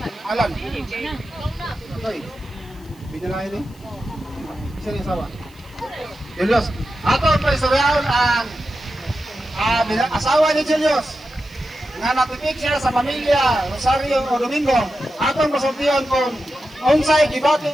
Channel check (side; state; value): right; noise; hiss, 29 dB below the sound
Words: Alan. Okay. Binalay ni. Isa ni asawa. Julius. Atong paisurayon ang asawa ni Julius nga natipik siya sa pamilya Rosario o Domingo. Atong pasultihan kung unsay gibati